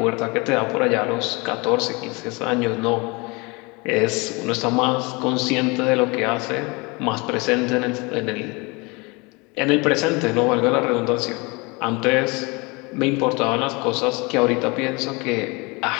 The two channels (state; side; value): quieter; right; 27.3 dB